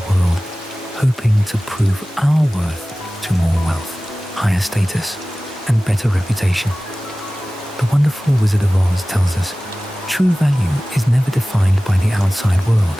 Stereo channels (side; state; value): both; normal; correlation 0.97